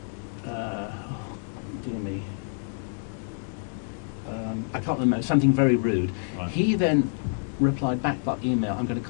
me, I can't remember, something very rude. Right. He then replied back by email, I'm going to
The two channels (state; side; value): silent; right; 60 dB below the other